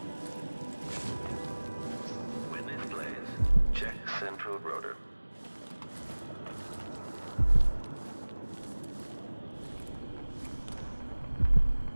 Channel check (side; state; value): both; inverted; correlation -1.00